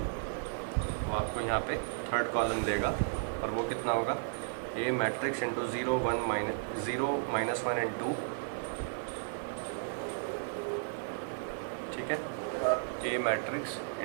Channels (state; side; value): silent; left; 55 dB below the other